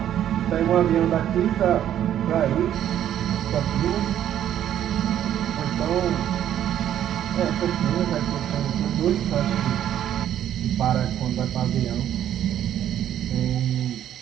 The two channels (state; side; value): quieter; left; 10.9 dB